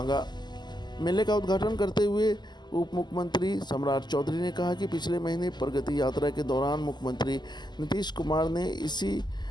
मेले का उद्घाटन करते हुए उप मुख्यमंत्री सम्राट चौधरी ने कहा कि पिछले महीने प्रगति यात्रा के दौरान मुख्यमंत्री नीतीश कुमार ने इसी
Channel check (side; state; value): right; late; 0.21 ms